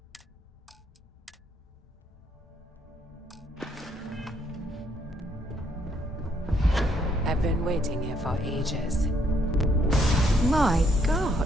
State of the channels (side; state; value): both; normal; correlation 0.71